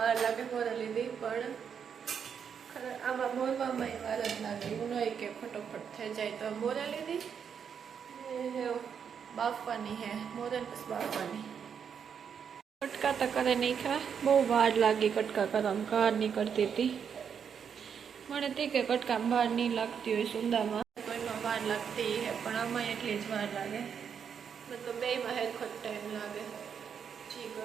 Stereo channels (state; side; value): quieter; left; 7.3 dB